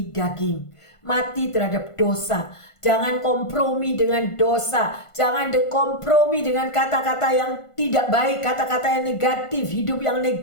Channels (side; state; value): right; late; 1.5 ms